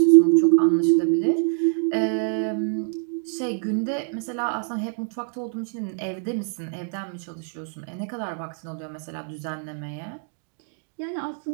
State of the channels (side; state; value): left; silent; 59 dB below the other